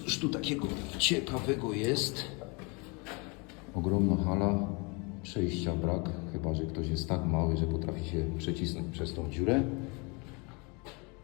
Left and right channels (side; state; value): right; quieter; 30.7 dB